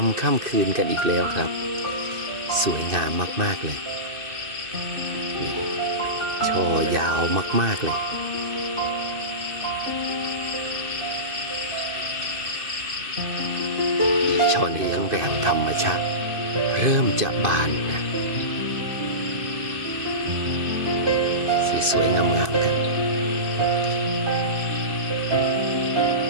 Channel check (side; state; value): left; late; 2.6 ms